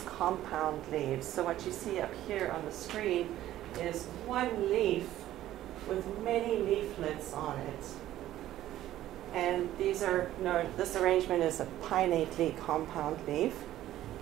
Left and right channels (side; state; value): left; quieter; 13.6 dB